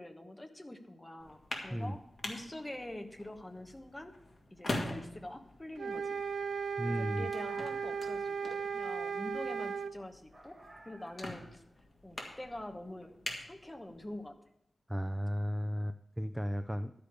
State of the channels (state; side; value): normal; both; correlation 0.91